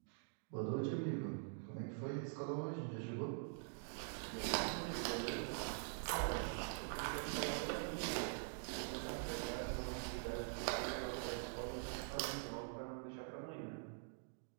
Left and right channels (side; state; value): left; silent; digital silence